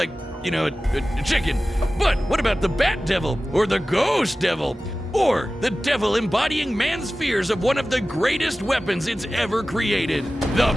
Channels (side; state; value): both; normal; correlation 0.96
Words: you know, a chicken. But what about the bat devil, or the ghost devil, or the devil embodying man's fears of one of the greatest weapons it's ever created, the